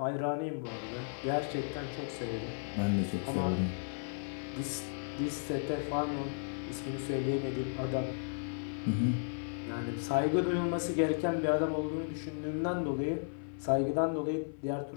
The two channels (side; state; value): right; silent; 55 dB below the other